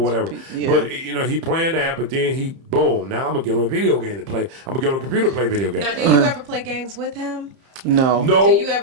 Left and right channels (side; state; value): left; late; 30 ms